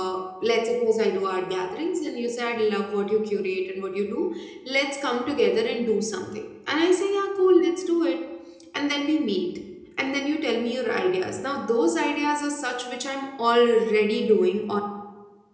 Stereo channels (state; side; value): identical; both; correlation 1.00